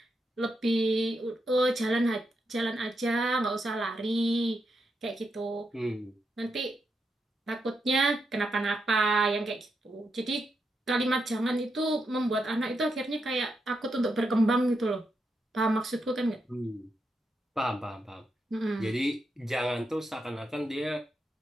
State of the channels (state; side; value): normal; both; correlation 0.84